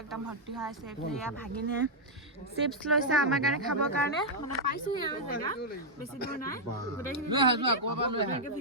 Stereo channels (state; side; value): normal; both; correlation -0.04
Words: একদম ভৰ্তি হৈ আছে এফালে ভাগিনে চিপছ লৈছে আমাৰ কাৰণে খাবৰ কাৰণে মানে পাইছো আৰু জেগা বেছি দূৰ নাই গোটেইখিনি